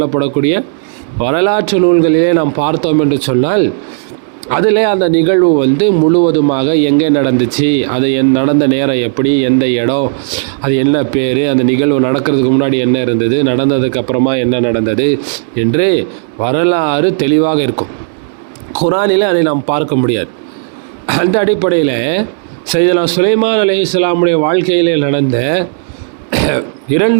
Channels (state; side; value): silent; left; digital silence